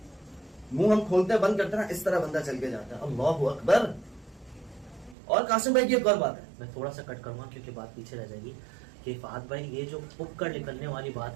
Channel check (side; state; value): left; drops out; at 5.2 s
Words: منہ ہم کھولتے بند کرتے ہیں اس طرح بندہ چل کے جاتا ہے. اللہ اکبر. اور قاسم بھائی کی ایک اور بات ہے, میں تھوڑا سا کٹ کروں گا کیونکہ بات پیچھے رہ جائے گی, کہ فہد بھائی یہ جو پک کر نکلنے والی